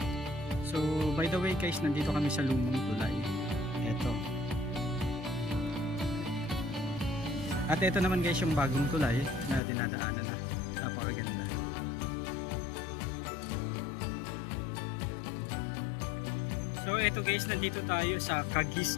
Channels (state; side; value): drops out; right; at 9.6 s